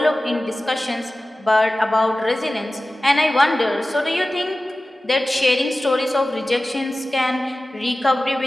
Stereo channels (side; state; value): both; normal; correlation 0.96